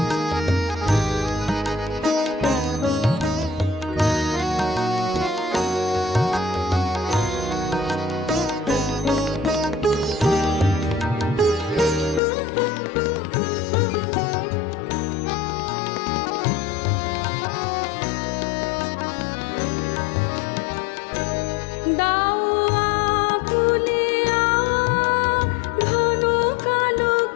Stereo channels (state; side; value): drops out; right; at 12.2 s